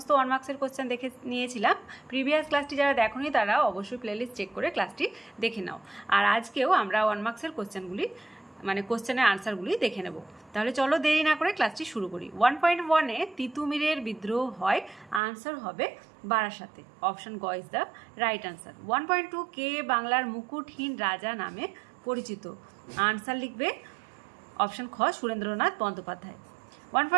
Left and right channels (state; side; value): drops out; left; at 15.2 s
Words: 1 মার্কসের কোশ্চেন দেখে নিয়েছিলাম। প্রিভিয়াস ক্লাসটি যারা দেখোনি তারা অবশ্যই প্লেলিস্ট চেক করে ক্লাসটি দেখে নাও। আর আজকেও আমরা 1 মার্কসের কোশ্চেনগুলি মানে কোশ্চেনের আনসারগুলি দেখে নেব। তাহলে চলো দেরি না করে ক্লাসটি শুরু করি। 1.1-এ তিতুমিরের বিদ্রোহ হয়, আনসার হবে বারাসাতে। অপশন গ ইজ দ্য রাইট আনসার। 1.2 কে বাংলার মুকুটহীন রাজা নামে পরিচিত, আনসার লিখবে অপশন খ সুরেন্দ্রনাথ বন্দ্যোপাধ্যায়।